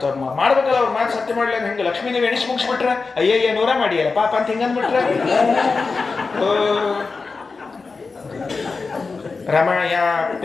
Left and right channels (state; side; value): quieter; right; 4.3 dB